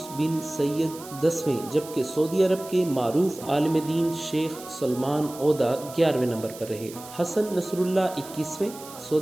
بن سید 10ویں، جبکہ سعودی عرب کے معروف عالم دین شیخ سلمان عودہ 11ویں نمبر پر رہے۔ حسن نصر اللہ 21ویں،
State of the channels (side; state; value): right; noise; hiss, 16 dB below the sound